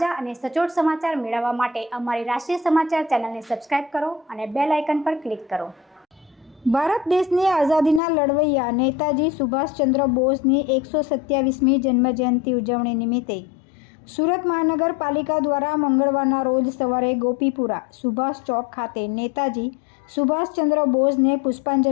અને સચોટ સમાચાર મેળવવા માટે અમારી રાષ્ટ્રીય સમાચાર ચેનલને સબસ્ક્રાઇબ કરો અને બેલ આઇકન પર ક્લિક કરો। ભારત દેશની આઝાદીના લડવૈયા નેતાજી સુભાષચંદ્ર બોઝની 127મી જન્મજયંતિ ઉજવણી નિમિત્તે સુરત મહાનગરપાલિકા દ્વારા મંગળવારના રોજ સવારે ગોપીપુરા સુભાષ ચોક ખાતે નેતાજી સુભાષચંદ્ર બોઝને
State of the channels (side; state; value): right; drops out; at 8.0 s